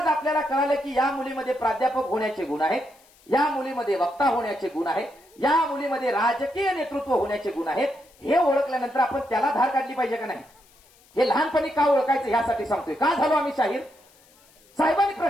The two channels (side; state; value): left; noise; hiss, 29 dB below the sound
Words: आपल्याला कळालं की या मुलीमध्ये प्राध्यापक होण्याचे गुण आहेत, या मुलीमध्ये वक्ता होण्याचे गुण आहेत, या मुलीमध्ये राजकीय नेतृत्व होण्याचे गुण आहेत. हे ओळखल्यानंतर आपण त्याला धार काढली पाहिजे का नाही, हे लहानपणी का ओळखायचं यासाठी सांगतोय. का झालो आम्ही शाहीर? साहेबांनी